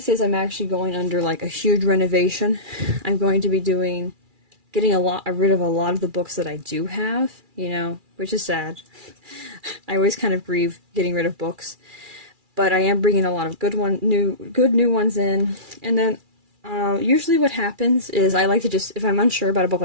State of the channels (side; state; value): left; late; 2.4 ms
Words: is I'm actually going under like a huge renovation. I'm going to be getting rid of a lot of the books that I do have, you know, which is sad. I always kind of grieve getting rid of books, but I am bringing a lot of good new ones in. And then usually what happens is I like to just, if I'm unsure about a book,